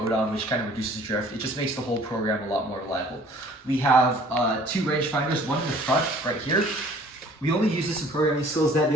which kind of reduces drift. It just makes the whole program a lot more reliable. We have 2 rangefinders, one in the front right here. We only use this in programming skills. That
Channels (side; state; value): both; normal; correlation 0.53